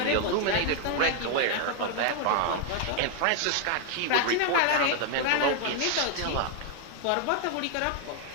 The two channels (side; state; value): both; different; correlation 0.00